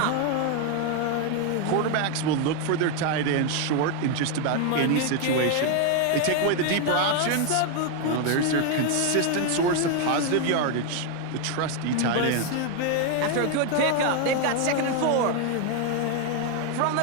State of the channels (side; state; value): both; different; correlation 0.01